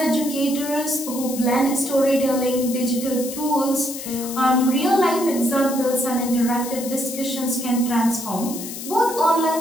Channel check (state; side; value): noise; left; hiss, 9 dB below the sound